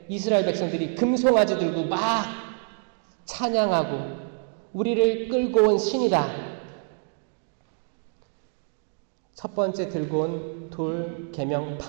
이스라엘 백성들이 금송아지 들고 막 찬양하고 우리를 끌고 온 신이다. 첫 번째 들고 온 돌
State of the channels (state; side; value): silent; left; 58 dB below the other